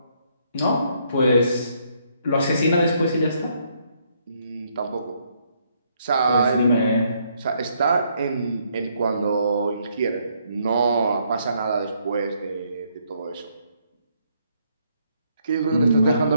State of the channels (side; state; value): both; inverted; correlation -0.71